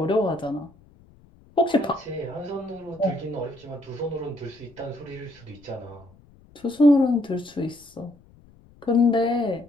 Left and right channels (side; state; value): left; noise; rumble, 27 dB below the sound